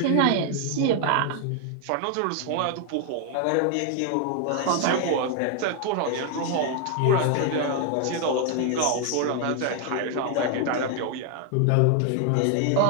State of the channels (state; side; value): different; both; correlation 0.00